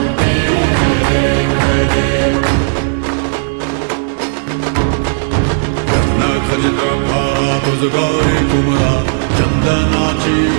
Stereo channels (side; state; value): left; silent; digital silence